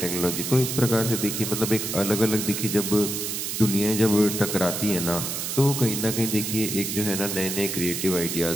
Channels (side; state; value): right; noise; hiss, 3 dB below the sound